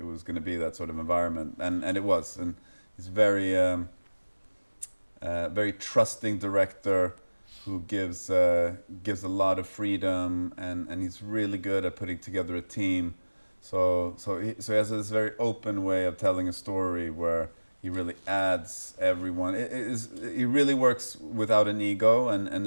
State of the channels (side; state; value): both; inverted; correlation -1.00